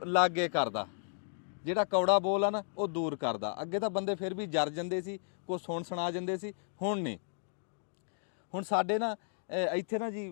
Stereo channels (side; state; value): right; silent; digital silence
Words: ਲਾਗੇ ਕਰਦਾ, ਜਿਹੜਾ ਕੌੜਾ ਬੋਲ ਆ ਨਾ ਉਹ ਦੂਰ ਕਰਦਾ। ਅੱਗੇ ਤਾਂ ਬੰਦੇ ਫਿਰ ਵੀ ਜਰ ਜਾਂਦੇ ਸੀ, ਕੁਛ ਸੁਣਾ ਜਾਂਦੇ ਸੀ, ਹੁਣ ਨਹੀਂ। ਹੁਣ ਸਾਡੇ ਨਾ ਇੱਥੇ ਨਾ